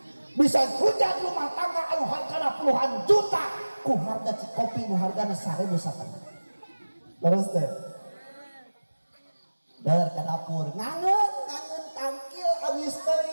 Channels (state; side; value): inverted; both; correlation -1.00